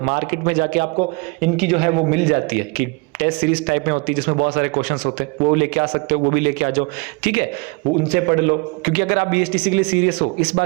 मार्केट में जाके आपको इनकी जो है वो मिल जाती है कि टेस्ट सीरीज टाइप में होती है जिसमें बहुत सारे क्वेश्चंस होते हैं, वो लेके आ सकते हो, वो भी लेके आ जाओ, ठीक है, वो उनसे पढ़ लो। क्योंकि अगर आप बीएसटीसी के लिए सीरियस हो, इस बार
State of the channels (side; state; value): left; quieter; 30.2 dB